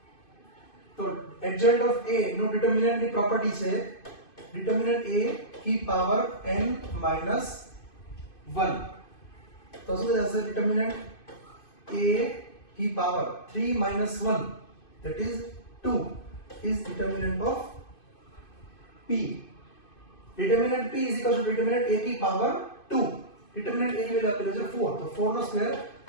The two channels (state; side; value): late; right; 2.5 ms